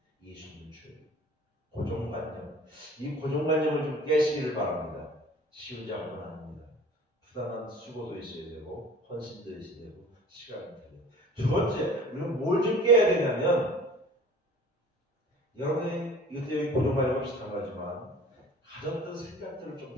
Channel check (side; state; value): both; normal; correlation 0.46